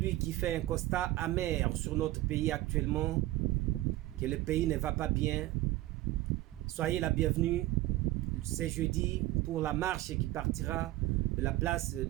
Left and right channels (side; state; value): left; quieter; 16.9 dB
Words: qui fait un constat amer sur notre pays actuellement, que le pays ne va pas bien, soyez la bienvenue. C'est jeudi pour la marche qui partira de la place